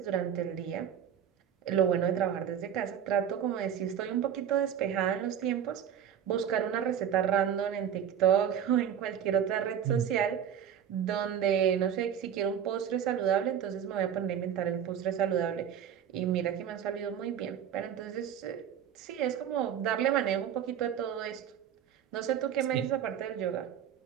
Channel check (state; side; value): quieter; left; 9.0 dB